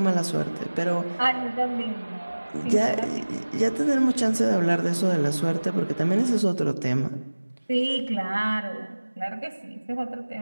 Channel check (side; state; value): both; inverted; correlation -1.00